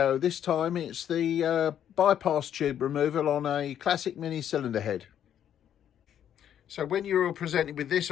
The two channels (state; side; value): quieter; right; 9.9 dB